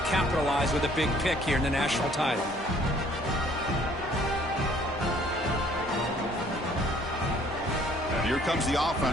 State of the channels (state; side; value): normal; both; correlation 0.59